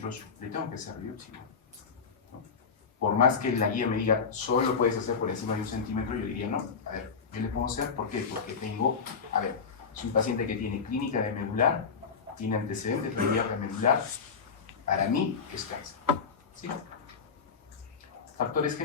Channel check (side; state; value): right; quieter; 5.7 dB